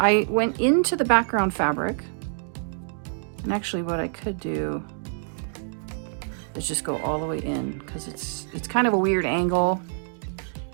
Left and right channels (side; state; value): left; silent; digital silence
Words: went into the background fabric, and actually what I could do is just go all the way in, because it's kind of a weird angle,